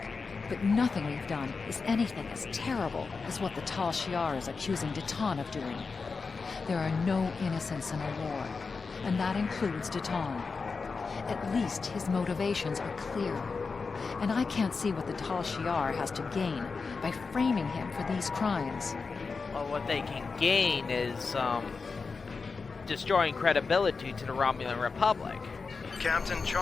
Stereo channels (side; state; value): right; quieter; 4.6 dB